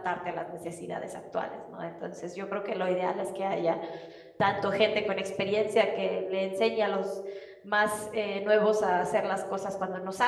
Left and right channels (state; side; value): identical; both; correlation 1.00